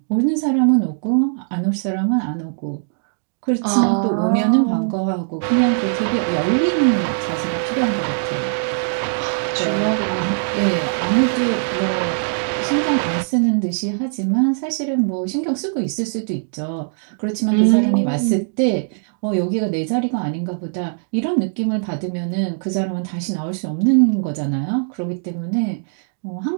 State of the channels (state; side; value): silent; left; digital silence